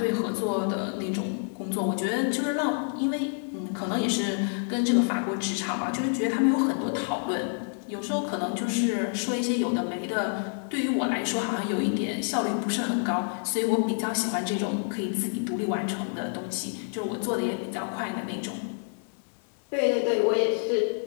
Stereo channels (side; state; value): right; silent; 59 dB below the other